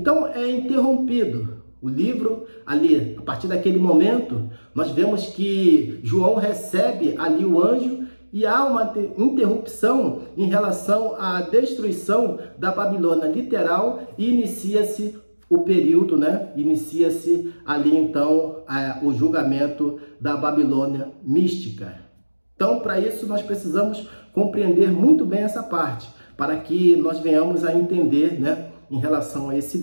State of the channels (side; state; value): both; inverted; correlation -1.00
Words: é interrompido o livro ali. A partir daquele momento, nós vemos que João recebe ali o anjo e há uma interrupção em relação à destruição da Babilônia literal e inicia-se o período, né? Inicia-se ali então o julgamento da Babilônia mística. Então, para isso, nós precisamos compreender muito bem essa parte, para que nós venhamos a entender, né, em relação a esse